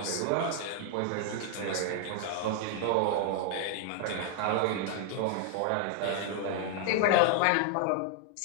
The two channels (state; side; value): different; both; correlation 0.00